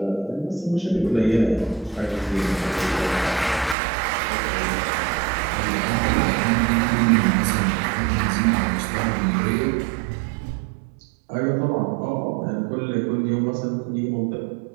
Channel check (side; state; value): left; drops out; at 3.8 s